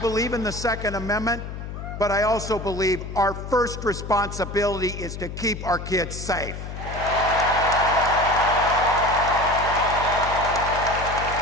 in the Second Amendment, but I also believe our first responsibility is to keep our kids safe.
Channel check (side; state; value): left; noise; hum, 8 dB below the sound